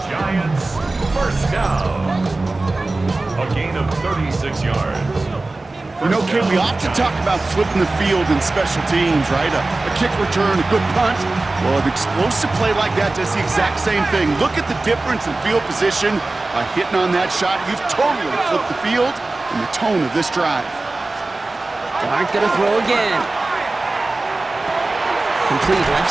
Giants, first down. A gain of 36 yards. You know, Kate, we often talk about flipping the field in special teams, right? A kick return, a good punt. Well, an explosive play like that does the exact same thing. Look at the difference in field position. By hitting on that shot, you've totally flipped the field and the tone of this drive. Dart going to throw again. Complete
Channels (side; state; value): left; quieter; 3.2 dB